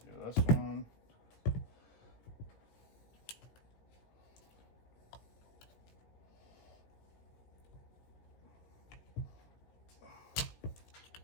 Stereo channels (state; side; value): late; right; 17 ms